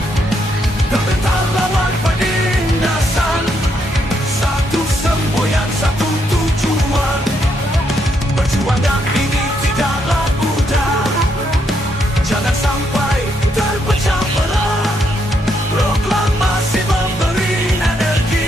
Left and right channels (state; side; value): normal; both; correlation 0.76